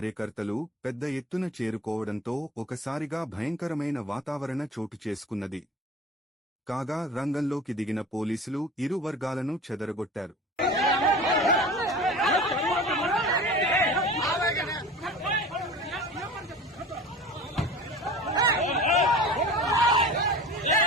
పెద్ద ఎత్తున చేరుకోవడంతో ఒకసారిగా భయంకరమైన వాతావరణ చోటు చేసుకున్నది. కాగా రంగంలోకి దిగిన పోలీసులు ఇరు వర్గాలను చెదరగొట్టారు.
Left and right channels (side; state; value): both; normal; correlation 0.39